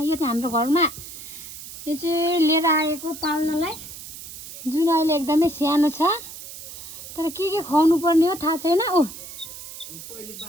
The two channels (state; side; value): noise; right; hiss, 13 dB below the sound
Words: यो चाहिँ हाम्रो घरमा यो चाहिँ लिएर आएको पाल्नलाई जुन अहिले एकदमै सानो छ तर के खुवाउनु पर्ने हो थाहा छैन ओ